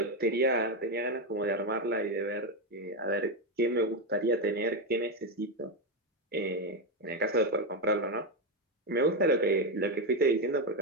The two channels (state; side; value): normal; both; correlation 0.08